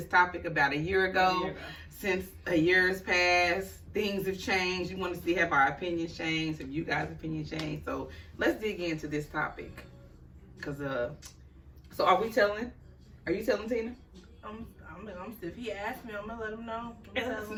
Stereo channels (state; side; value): identical; both; correlation 1.00